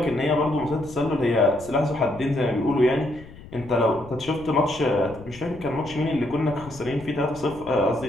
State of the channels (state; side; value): noise; left; rumble, 17 dB below the sound